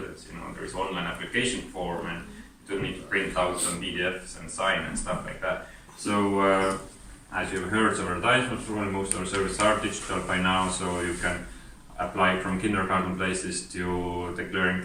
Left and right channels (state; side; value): identical; both; correlation 1.00